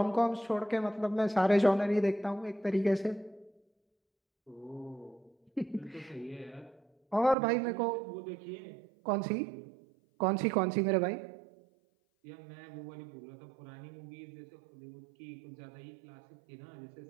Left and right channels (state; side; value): drops out; left; at 7.4 s